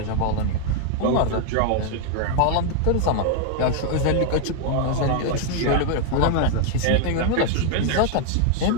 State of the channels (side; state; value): both; different; correlation 0.00